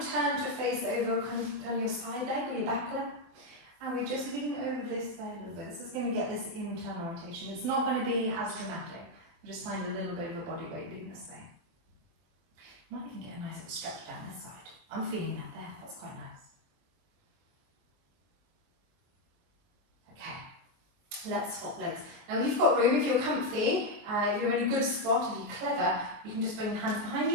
turn to face over kind of your side leg or your back leg. And we just lean over this there a little bit. This is going to get this internal rotation. It's not going to be as dramatic. Just find a little bit of your body weight doing this thing. Might even get a nice little stretch down this side. I'm feeling that there. That's quite nice. Okay. Let's swap legs. Now you've got room if you're comfy, if you're in a good spot, if you're clever, you can just bring your hands behind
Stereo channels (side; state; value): left; late; 23 ms